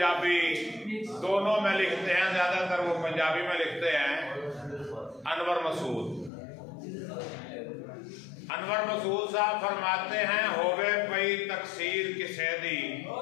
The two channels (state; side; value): drops out; right; at 6.3 s